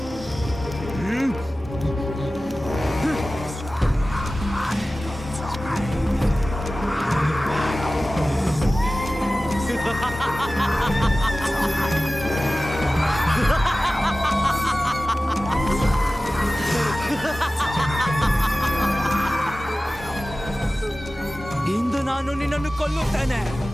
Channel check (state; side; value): normal; both; correlation 0.96